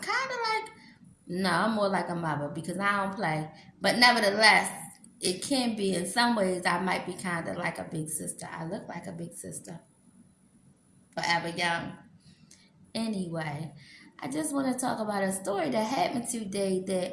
of like, no, I'm more like a mother because I don't play. But nevertheless, it can be in some ways I might be kind of like a big sister. I look like a big sister, forever young. Anyway, I just want to talk about a story that happened today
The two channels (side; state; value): both; identical; correlation 1.00